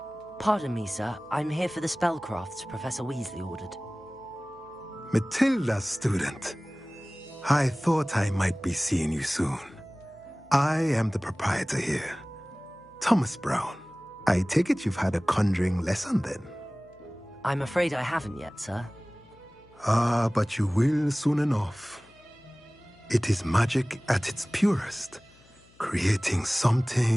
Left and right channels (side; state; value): left; noise; hum, 28 dB below the sound